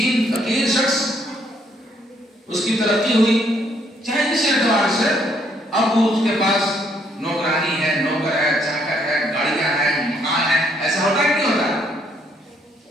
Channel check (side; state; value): both; normal; correlation 0.69